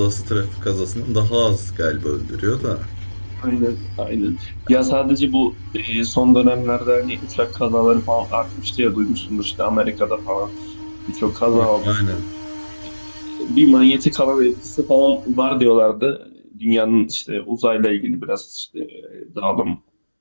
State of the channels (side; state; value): both; inverted; correlation -1.00